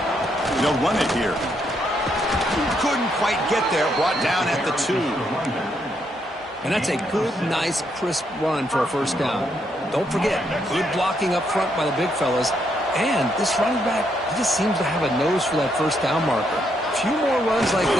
They'll run it here. Couldn't quite get there. Brought down at the 2. And that's a good, nice, crisp run for a first down. Don't forget, good blocking up front by the big fellas. And this running back, he just seems to have a nose for that first down marker. A few more runs like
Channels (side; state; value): both; normal; correlation 0.76